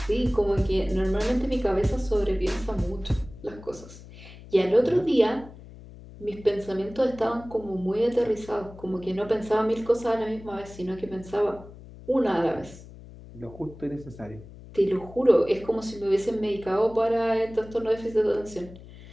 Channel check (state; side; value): noise; left; hum, 18 dB below the sound